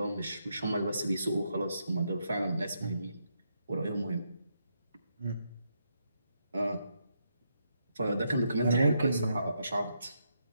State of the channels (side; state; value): both; inverted; correlation -0.80